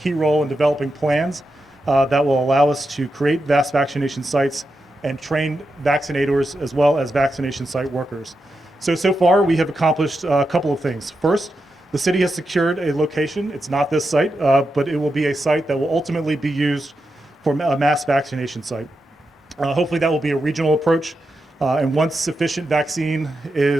role in developing plans that will allow us to create mass vaccination sites and train vaccinators as well as vaccination site workers. So far we have accomplished a couple of things. First, the city has secured a location. It's not this site, but it will be a site that will ultimately be used for a mass vaccination site. Hopefully that will be a regional approach, and once sufficient vaccine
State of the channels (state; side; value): normal; both; correlation 0.87